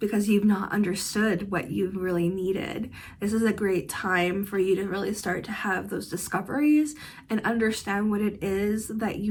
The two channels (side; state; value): both; identical; correlation 1.00